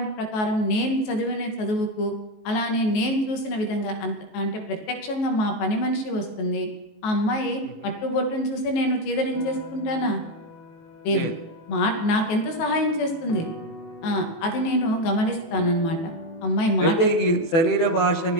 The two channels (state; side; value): late; right; 19 ms